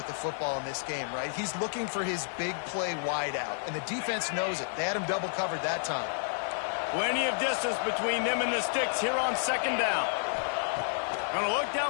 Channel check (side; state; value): right; silent; 57 dB below the other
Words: the football in this game, right? He's looking for his big play wide out, and the defense knows it. They had him double covered that time. Plenty of distance between them and the sticks here on second down. Going to look